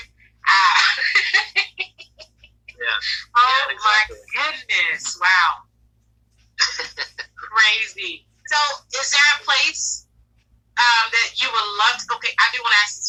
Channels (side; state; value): both; identical; correlation 1.00